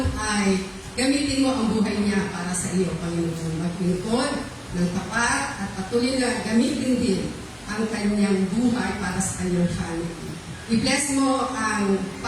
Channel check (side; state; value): both; identical; correlation 1.00